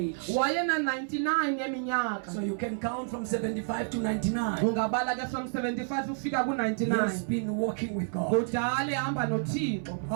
wayena-99 yeminyaka. So you can count from 75 to 99. Ungabala ke from 75 ukufika He has ku-99. been walking with God. Kudala ehamba noThixo.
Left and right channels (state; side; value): silent; left; 58 dB below the other